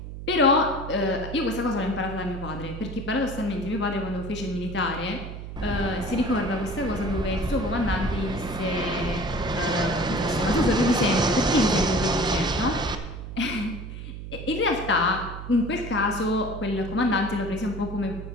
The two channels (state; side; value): noise; right; hum, 10 dB below the sound